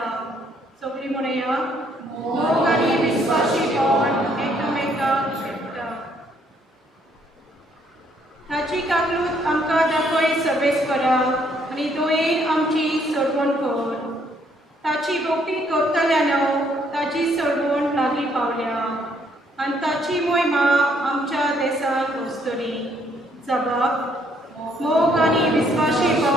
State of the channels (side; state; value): both; normal; correlation 0.68